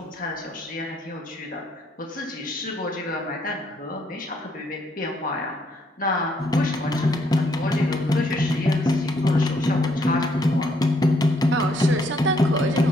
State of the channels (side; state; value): both; normal; correlation 0.70